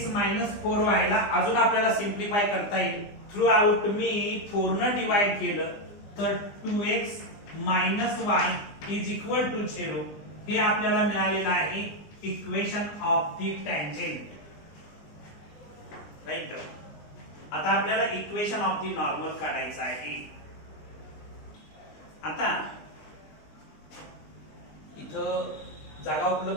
minus 4y ला अजून आपल्याला सिम्प्लिफाय करता येईल. थ्रू आउट मी 4 न डिवाइड केलं तर 2x minus y is equal to 0. हे आपल्याला मिळालेलं आहे equation of the tangent. Right. आता आपल्याला इक्वेशन ऑफ द नॉर्मल काढायचं आहे. आता इथं जागा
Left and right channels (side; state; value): right; late; 20 ms